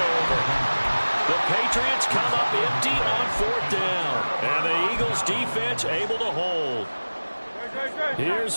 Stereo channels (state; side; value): inverted; both; correlation -1.00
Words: over. The Patriots come up empty on 4th down. And the Eagles defense able to hold. Here's